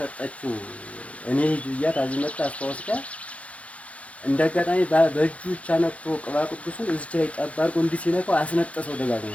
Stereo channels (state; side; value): late; right; 0.064 ms